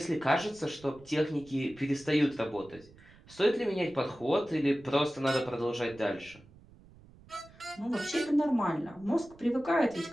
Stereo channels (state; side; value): noise; right; rumble, 24 dB below the sound